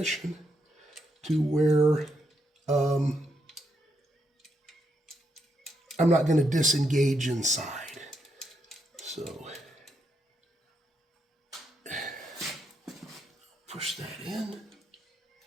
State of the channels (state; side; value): normal; both; correlation 0.79